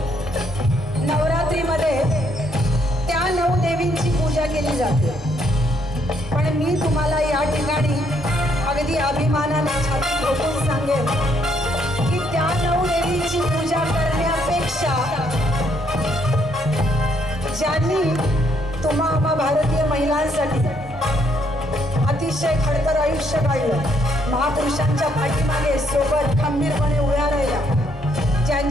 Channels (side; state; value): both; normal; correlation 0.71